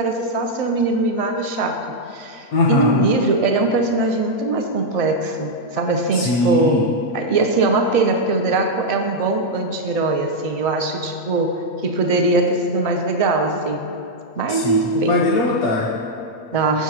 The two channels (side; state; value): right; late; 8.5 ms